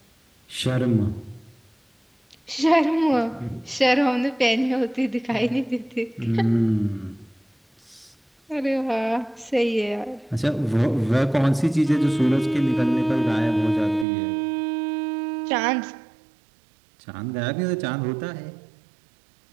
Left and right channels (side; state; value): left; drops out; at 14.1 s